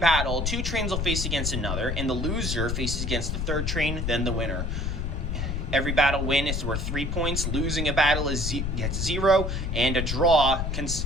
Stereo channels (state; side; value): noise; left; rumble, 1 dB below the sound